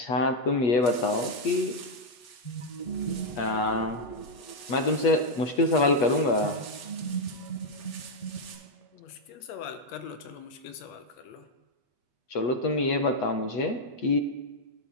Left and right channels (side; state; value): right; late; 8.3 ms